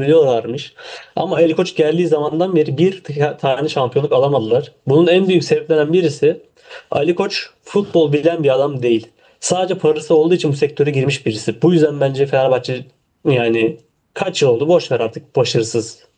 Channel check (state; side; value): identical; both; correlation 1.00